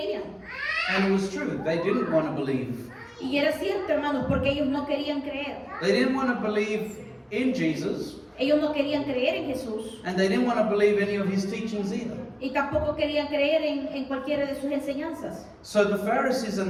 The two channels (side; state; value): both; identical; correlation 1.00